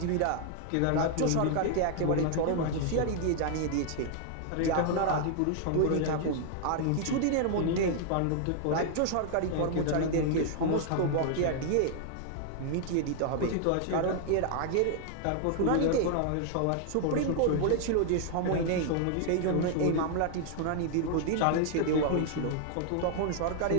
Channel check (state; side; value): different; both; correlation 0.00